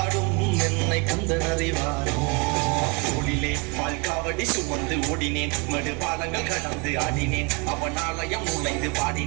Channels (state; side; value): quieter; left; 30.0 dB